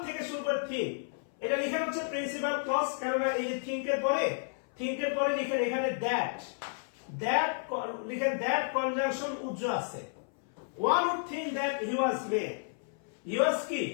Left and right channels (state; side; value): silent; right; 56 dB below the other